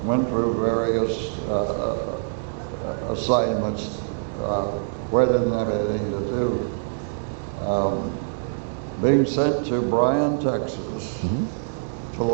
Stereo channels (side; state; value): left; silent; digital silence